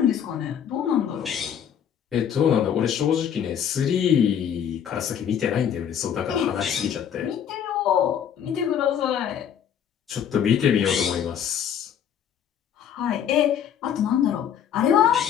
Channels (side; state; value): right; quieter; 8.8 dB